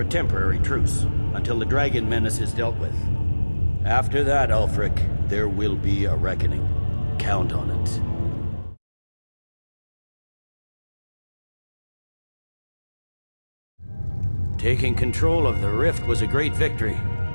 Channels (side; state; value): both; inverted; correlation -1.00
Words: temporary truce, until the Dragon Menace is dealt with. After that, Ulfric, there will be a reckoning. Count on it. Taking control of the Rift was a great victory.